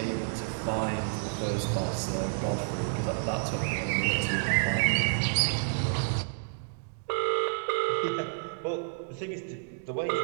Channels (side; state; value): left; silent; digital silence